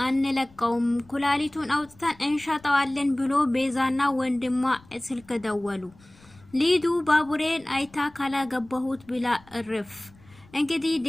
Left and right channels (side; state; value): left; noise; rumble, 26 dB below the sound